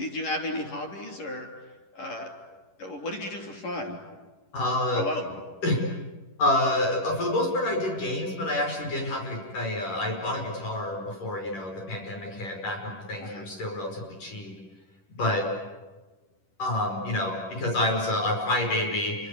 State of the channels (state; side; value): late; right; 11 ms